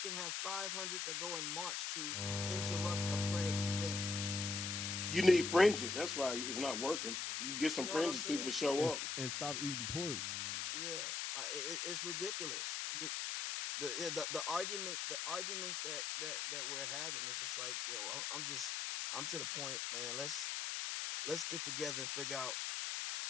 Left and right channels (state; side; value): noise; left; hiss, 1 dB below the sound